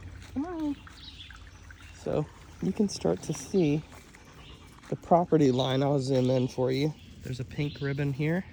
come on. So you can start to see the property line. I'll zoom in for you. There's a pink ribbon here.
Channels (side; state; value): both; identical; correlation 1.00